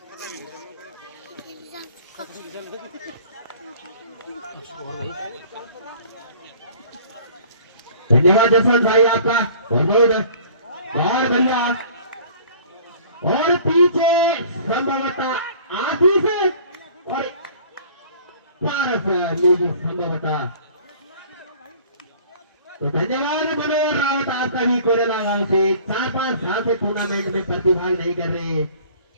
धन्यवाद जसवंत भाई आपका बहुत और बढ़िया। और पीछे संभवतः आशीष और पारस लेगी संभवतः। तो धन्यवाद मनोहर रावत आपका भी कोरेला गांव से 4-5 साल से टूर्नामेंट में प्रतिभाग नहीं कर रहे।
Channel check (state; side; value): inverted; both; correlation -0.49